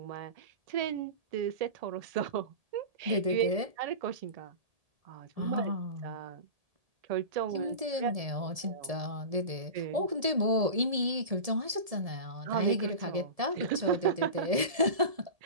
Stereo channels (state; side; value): late; left; 1.7 ms